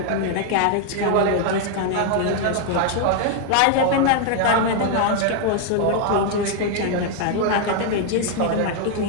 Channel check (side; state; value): both; different; correlation 0.00